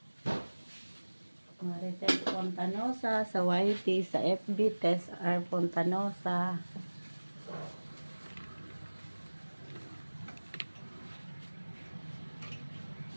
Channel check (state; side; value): inverted; both; correlation -1.00